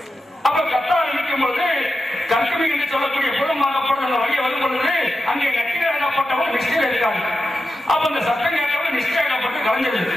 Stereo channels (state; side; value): normal; both; correlation 0.90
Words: அப்ப கத்த ஆரம்பிக்கும் பொழுது கர்த்தவி என்று சொல்லக்கூடிய புறமாகப்பட்ட அந்த வழியை வரும் பொழுது அங்கே நக்கிராகப்பட்டவர் நிஷ்டையில் இருக்காங்க. அப்ப இந்த சட்டம் கேட்டவர் நிஷ்டையாகப்பட்டு கலைஞ்சிருது.